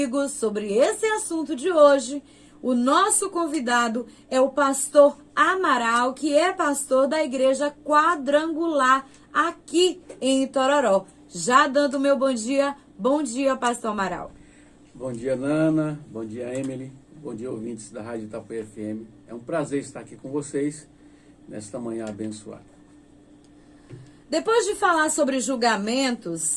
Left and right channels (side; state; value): both; identical; correlation 1.00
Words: sobre esse assunto de hoje, o nosso convidado é o pastor Amaral, que é pastor da Igreja Quadrangular aqui em Itororó. Já dando meu bom dia, pastor Amaral. Bom dia, Nana, bom dia, Emily, bom dia, ouvintes da Rádio Itapuã FM. É um prazer estar aqui com vocês nesta manhã abençoada. Depois de falar sobre